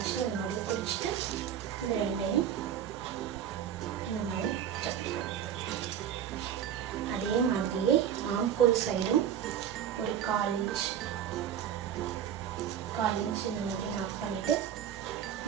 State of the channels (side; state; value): left; quieter; 9.5 dB